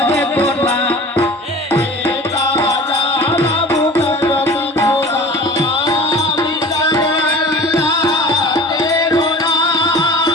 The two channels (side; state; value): both; normal; correlation 0.41